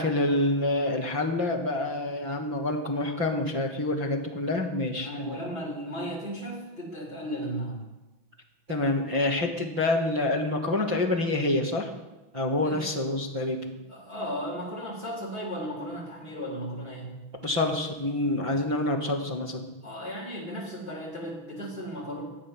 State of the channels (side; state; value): left; late; 5.8 ms